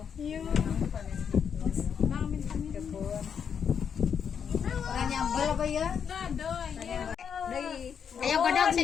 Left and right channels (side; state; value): right; quieter; 7.3 dB